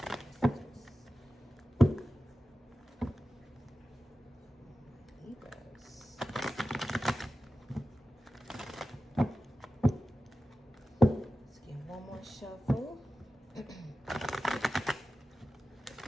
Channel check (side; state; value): both; normal; correlation 0.94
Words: Libras. Let's get one more shuffle.